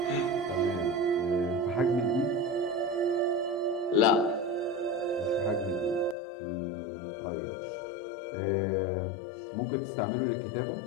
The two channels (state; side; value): drops out; right; at 6.2 s